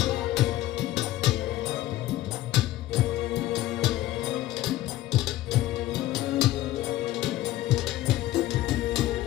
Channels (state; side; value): quieter; right; 15.2 dB